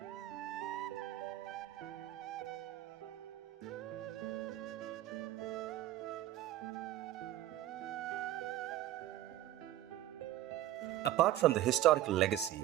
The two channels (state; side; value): quieter; left; 13.8 dB